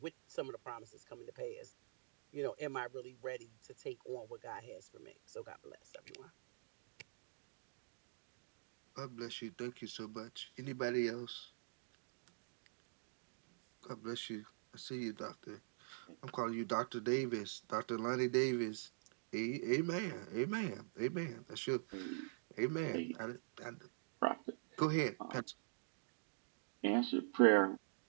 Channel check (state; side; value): silent; left; digital silence